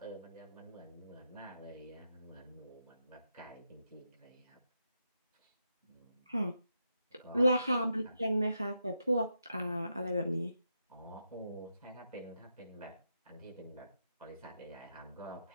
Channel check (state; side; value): inverted; both; correlation -0.84